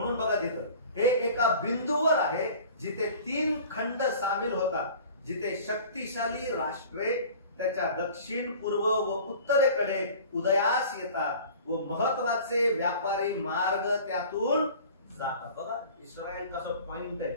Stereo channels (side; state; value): both; inverted; correlation -0.44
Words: बघा तिथं हे एका बिंदूवर आहे जिथे 3 खंड सामील होतात, जिथे शक्तिशाली राष्ट्रे त्याच्या दक्षिण, पूर्व व उत्तरेकडे उदयास येतात व महत्वाचे व्यापारी मार्ग त्यातून जातात. बघा इस्रायल कसं पॉइंट